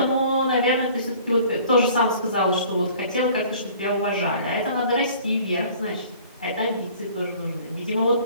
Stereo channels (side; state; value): both; inverted; correlation -0.50